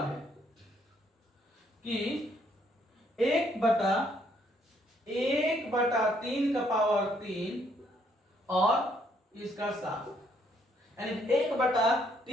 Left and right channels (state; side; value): normal; both; correlation 0.69